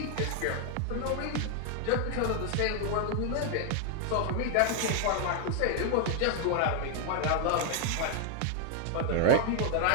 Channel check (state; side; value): different; both; correlation 0.00